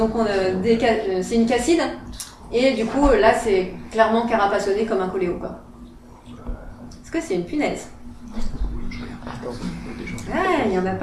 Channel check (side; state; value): both; identical; correlation 1.00